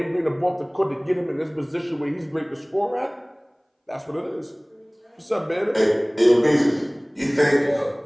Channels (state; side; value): identical; both; correlation 1.00